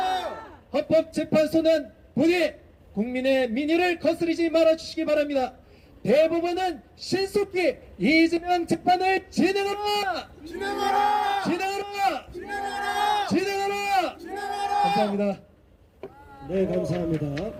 헌법재판소는 부디 국민의 민의를 거스르지 말아주시기 바랍니다. 대법원은 신속히 이재명 재판을 진행하라! 감사합니다. 네, 감사합니다.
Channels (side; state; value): both; identical; correlation 1.00